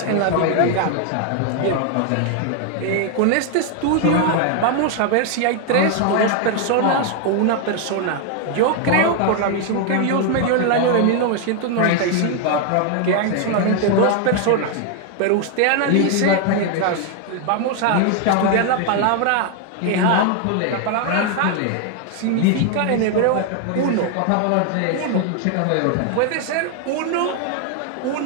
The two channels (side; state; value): both; different; correlation 0.00